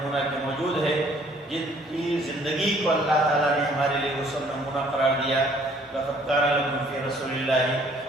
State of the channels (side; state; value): both; normal; correlation 0.60